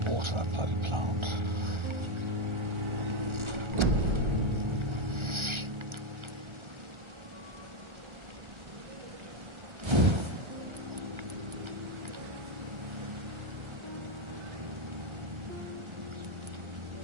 water that bloody plant.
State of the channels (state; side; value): late; left; 1.4 ms